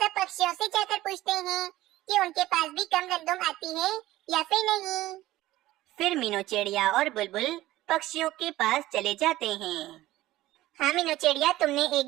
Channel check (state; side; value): quieter; left; 16.2 dB